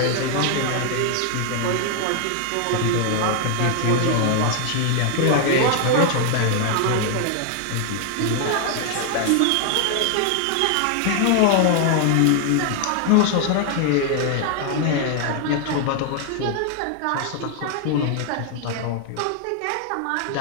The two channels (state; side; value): different; both; correlation 0.00